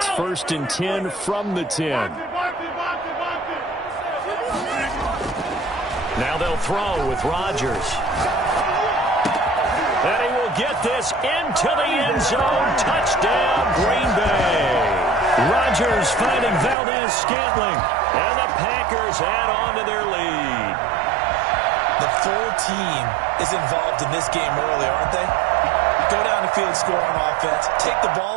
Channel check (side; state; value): left; drops out; at 16.8 s